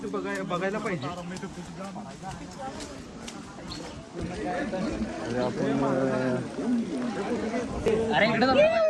बघायला पाहिजे. अरे इकडे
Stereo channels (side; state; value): both; identical; correlation 1.00